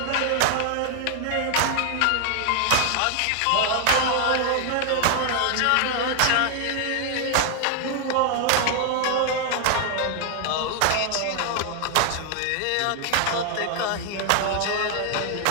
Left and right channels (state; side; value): different; both; correlation 0.00